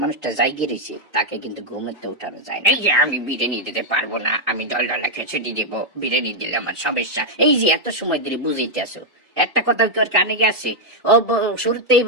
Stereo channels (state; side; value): normal; both; correlation -0.02